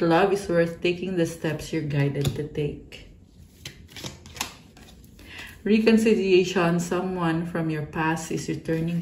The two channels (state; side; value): identical; both; correlation 1.00